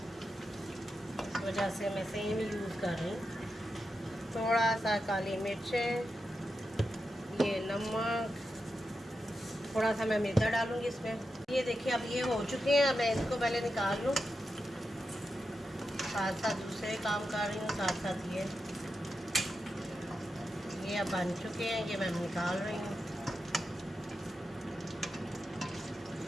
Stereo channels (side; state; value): both; normal; correlation 0.89